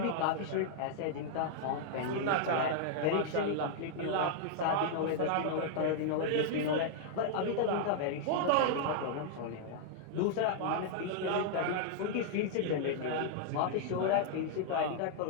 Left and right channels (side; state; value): both; different; correlation -0.01